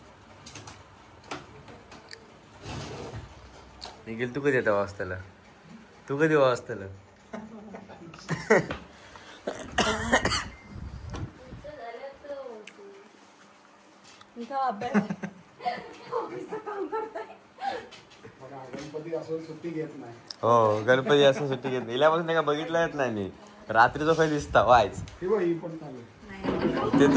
निखिल तू कधी येतो वाजताला तू कधी वाजताला गणपती असून सुट्टी घेत नाही. हो गणपती असं सुट्टी घेत नाही. इल्यापासून का बघितलं येत नाही मी रात्रीचा काही दिसता वायच ते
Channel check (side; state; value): both; identical; correlation 1.00